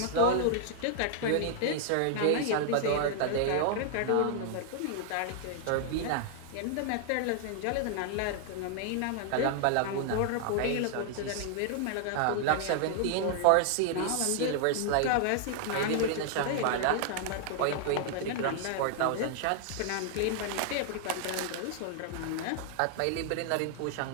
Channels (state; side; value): different; both; correlation -0.01